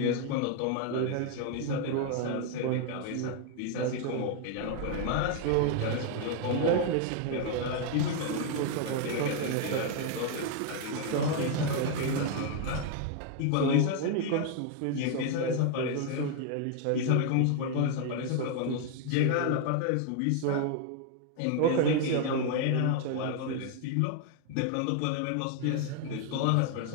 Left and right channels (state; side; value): different; both; correlation 0.00